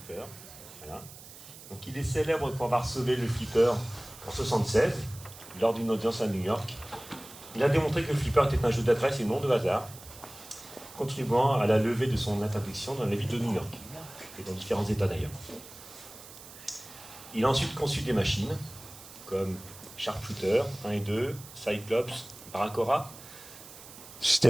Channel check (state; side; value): noise; right; hiss, 17 dB below the sound